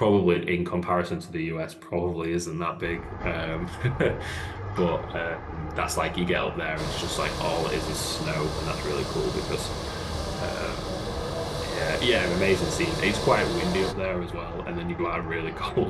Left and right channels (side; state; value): both; identical; correlation 1.00